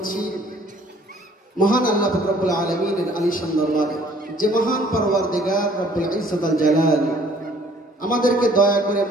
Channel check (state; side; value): normal; both; correlation 0.58